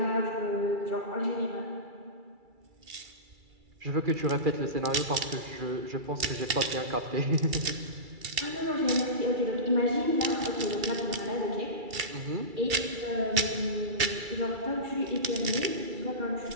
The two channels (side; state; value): left; late; 2.3 ms